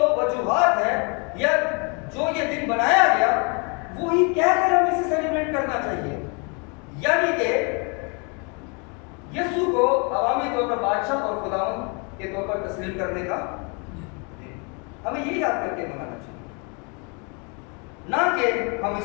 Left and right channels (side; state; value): right; quieter; 34.2 dB